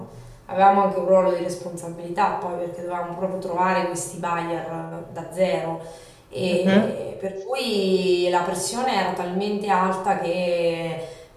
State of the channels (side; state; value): both; identical; correlation 1.00